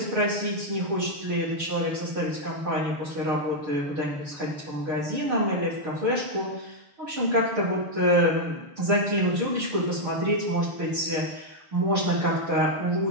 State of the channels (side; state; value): left; late; 6.8 ms